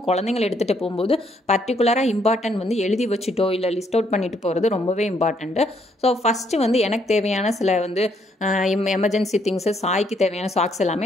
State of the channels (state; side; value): normal; both; correlation 0.71